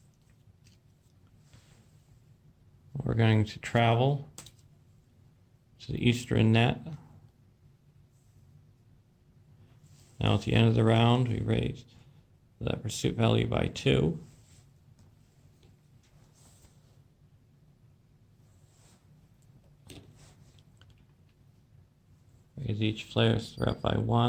We're going to travel to the Eastern Net. Now at the end of the round, we raise the pursuit value by 2. Raise each player's threat by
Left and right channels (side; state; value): both; identical; correlation 1.00